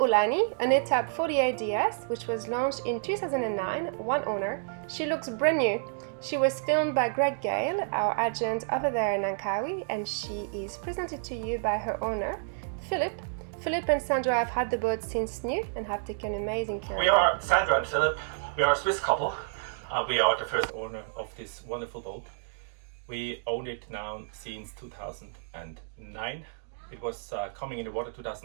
an Etap 48 DS, which was launched in 2009, one owner. She looks brand new. She was filmed by Greg Gale, our agent over there in Langkawi, and she is presented to you by her owner, Philip. Philip and Sandra have had the boat since new and have taken amazing care of it. We are Sandra and Philip. We are a Swiss couple. We are the first owner of this wonderful boat. We own it now since 2009. It was coming in the water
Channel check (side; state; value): left; silent; digital silence